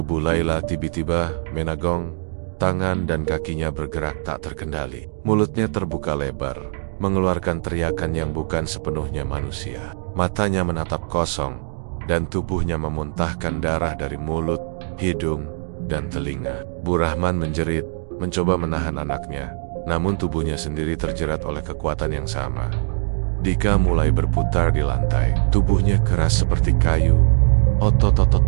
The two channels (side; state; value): left; silent; digital silence